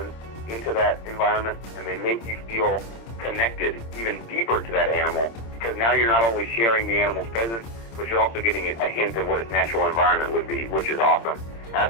into that environment, and they make you feel connected even deeper to that animal, because now you're not only sharing the animal's presence, but you're also getting a hint of what its natural environment would be, which is awesome. And I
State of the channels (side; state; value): right; late; 26 ms